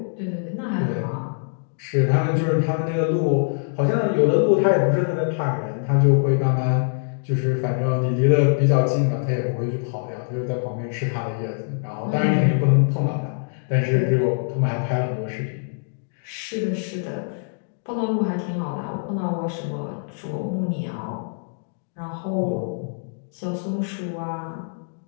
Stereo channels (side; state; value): right; silent; digital silence